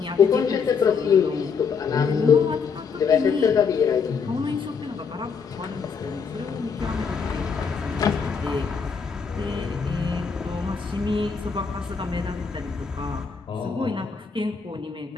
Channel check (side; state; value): right; quieter; 5.8 dB